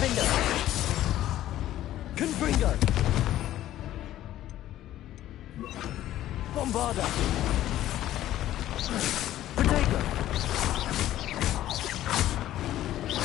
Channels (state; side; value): quieter; right; 13.4 dB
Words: Confringo. Bombarda. Protego.